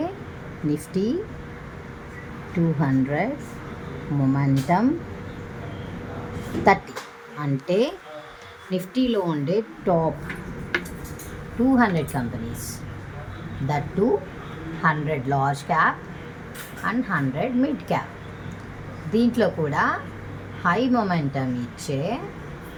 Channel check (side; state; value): both; identical; correlation 1.00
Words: నిఫ్టీ 200 మొమెంటమ్ 30, అంటే నిఫ్టీలో ఉండే top 200 companies, that to 100 large cap and 100 mid cap. దీంట్లో కూడా హై మొమెంటమ్ ఇచ్చే